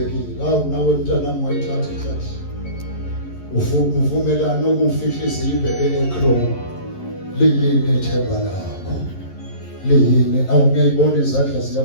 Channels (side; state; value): right; late; 11 ms